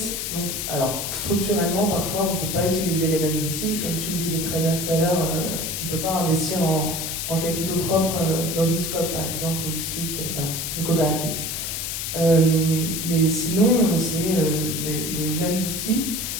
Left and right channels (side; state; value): left; noise; hiss, 3 dB below the sound